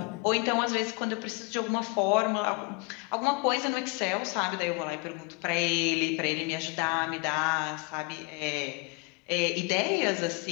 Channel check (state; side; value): quieter; right; 28.7 dB